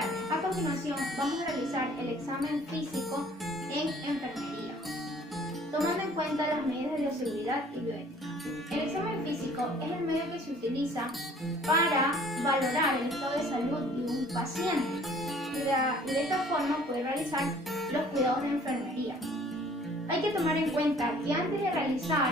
tardes. A continuación vamos a realizar el examen físico en enfermería, tomando en cuenta las medidas de bioseguridad y bioética. El examen físico es el medio que se utiliza para valorar el estado de salud de un paciente y de esta forma poder realizar los cuidados de enfermería. Hay que tomar en cuenta que antes de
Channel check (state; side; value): normal; both; correlation 0.54